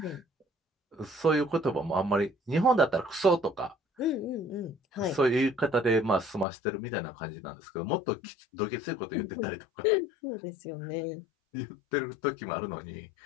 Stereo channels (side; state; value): right; drops out; at 6.5 s